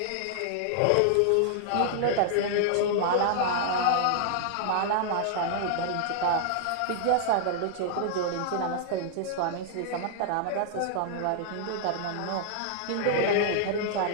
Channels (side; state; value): both; different; correlation -0.01